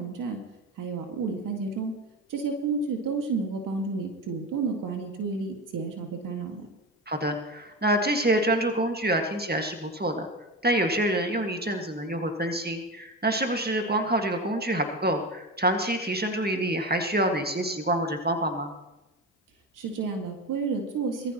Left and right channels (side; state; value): both; normal; correlation 0.23